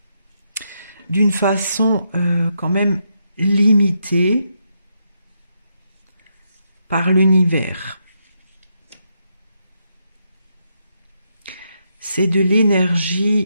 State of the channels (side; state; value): both; inverted; correlation -0.81